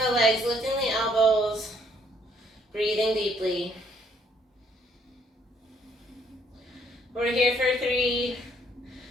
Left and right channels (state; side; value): normal; both; correlation 0.67